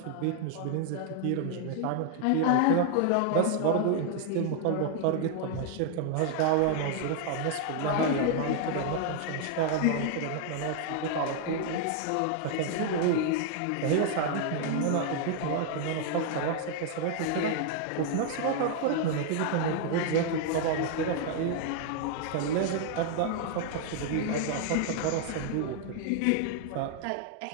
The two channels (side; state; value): both; different; correlation 0.00